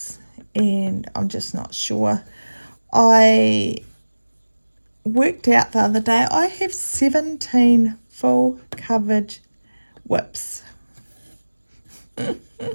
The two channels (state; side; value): inverted; both; correlation -1.00